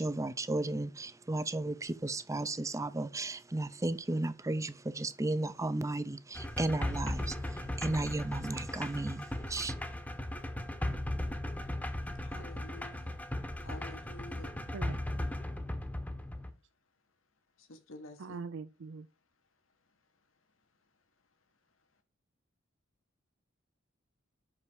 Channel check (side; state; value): both; normal; correlation 0.81